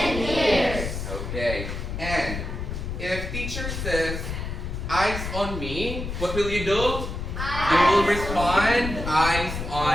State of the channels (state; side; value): noise; left; rumble, 5 dB below the sound